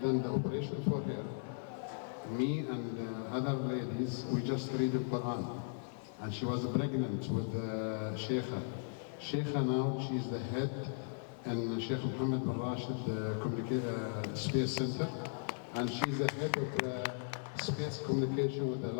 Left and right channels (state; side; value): silent; right; 53 dB below the other